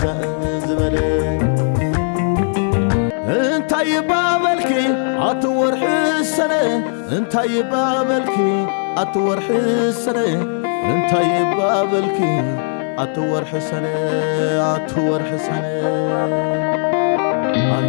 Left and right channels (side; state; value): right; silent; digital silence